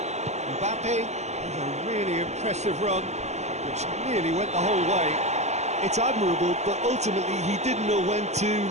Mbappe. A really impressive run, which nearly went the whole way. It's admirable, but ultimately he didn't know when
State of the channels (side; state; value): left; late; 0.33 ms